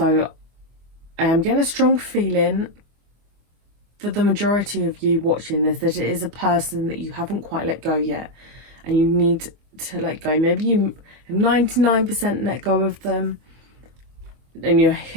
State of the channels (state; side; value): late; left; 25 ms